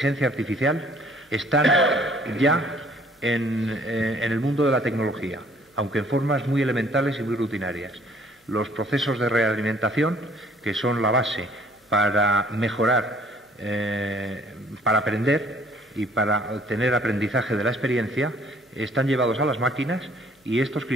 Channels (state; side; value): normal; both; correlation 0.58